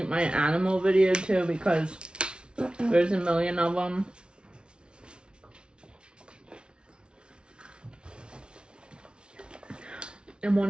my animal video too because there's a million of them. And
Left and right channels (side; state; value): left; late; 0.056 ms